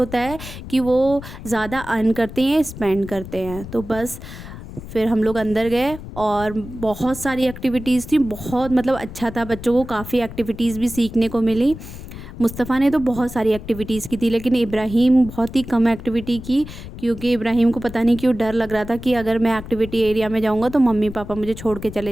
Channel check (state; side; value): noise; left; rumble, 12 dB below the sound